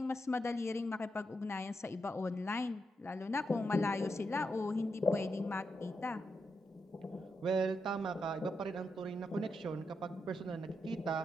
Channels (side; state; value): both; normal; correlation 0.84